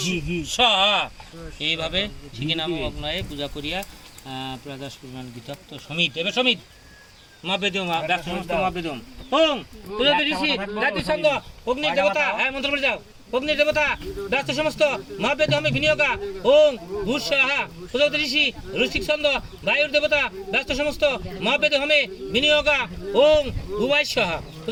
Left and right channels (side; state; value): both; identical; correlation 1.00